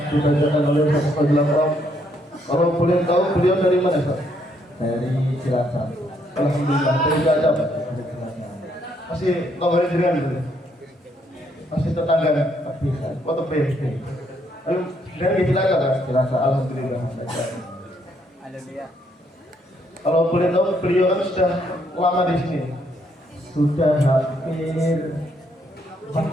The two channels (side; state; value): both; normal; correlation 0.72